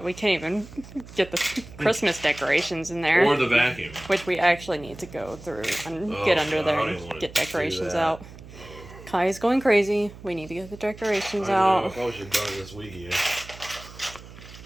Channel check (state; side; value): noise; right; hum, 17 dB below the sound